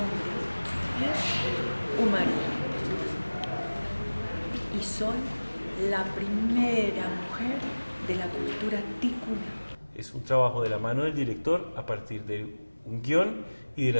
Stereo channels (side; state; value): both; inverted; correlation -1.00